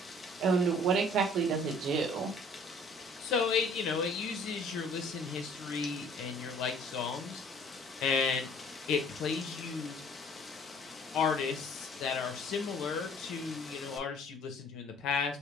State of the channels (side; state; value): both; normal; correlation 0.54